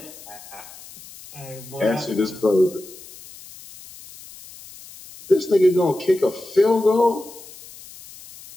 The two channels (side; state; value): left; noise; hiss, 18 dB below the sound